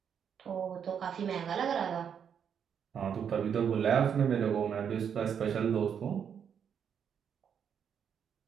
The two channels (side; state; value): left; quieter; 7.8 dB